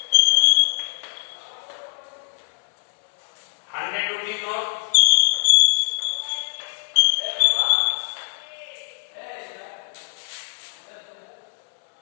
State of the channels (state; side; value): silent; right; 63 dB below the other